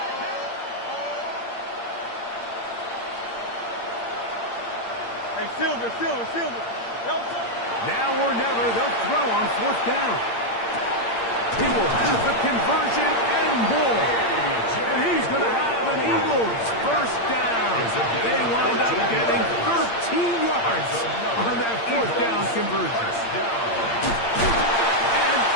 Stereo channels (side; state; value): right; late; 8.7 ms